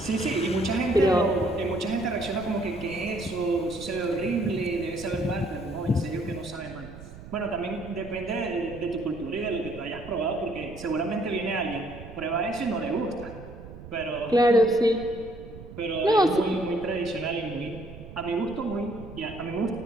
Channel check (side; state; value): right; noise; rumble, 15 dB below the sound